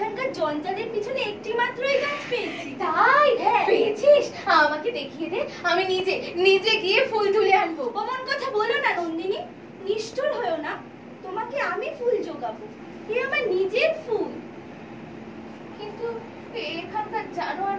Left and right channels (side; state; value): both; identical; correlation 1.00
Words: জঞ্জালের পিছনে একটি মাত্রই গাছ পেয়েছি। তাই? পেয়েছিস? আমাকে দেখিয়ে দে, আমি নিজে নিজে গিয়ে ফুল তুলে আনবো। অমন কথা বলো না নন্দিনী, নিষ্ঠুর হয়েও না। তোমাকে আমি ফুল জোগাবো, এ আমার নিজের ফুল। কিন্তু এখানকার